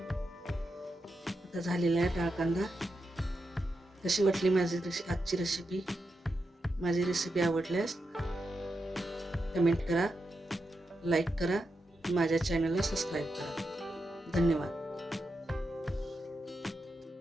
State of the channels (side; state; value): both; normal; correlation 0.86